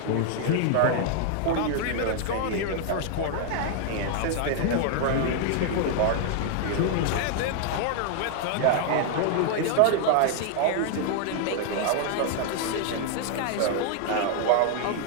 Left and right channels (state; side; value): different; both; correlation 0.00